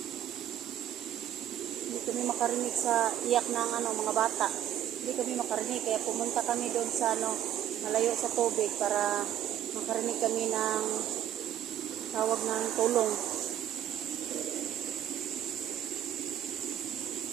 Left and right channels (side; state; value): left; quieter; 11.0 dB